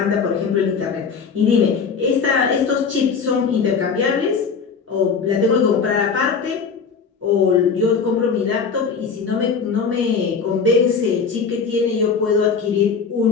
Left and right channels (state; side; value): quieter; right; 5.6 dB